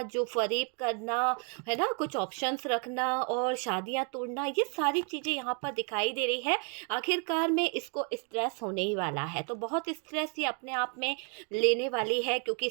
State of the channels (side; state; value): left; quieter; 39.1 dB